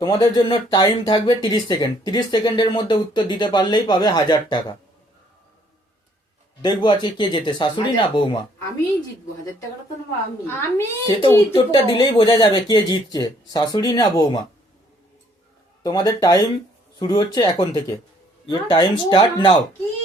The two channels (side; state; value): both; normal; correlation 0.64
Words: তোমাদের জন্য টাইম থাকবে 30 সেকেন্ড। 30 সেকেন্ডের মধ্যে উত্তর দিতে পারলেই পাবে 1000 টাকা। দেখবো আজকে কে জেতে, শাশুড়ি না বৌমা। আমি জিতবো, 1000 টাকাটা তো নেবো আমি। আমি সে তো উত্তরটা দিলেই বোঝা যাবে কে জিতছে, শাশুড়ি না বৌমা। তোমাদের টাইম শুরু হচ্ছে এখন থেকে। Your time start now. কি